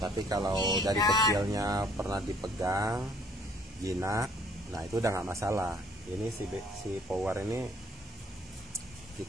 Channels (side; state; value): both; normal; correlation 0.61